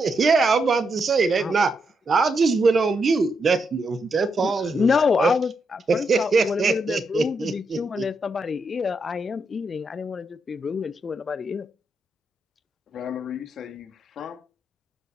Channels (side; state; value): both; normal; correlation 0.81